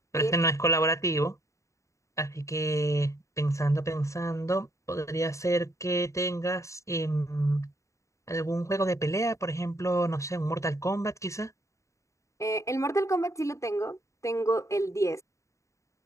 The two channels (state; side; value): late; right; 0.15 ms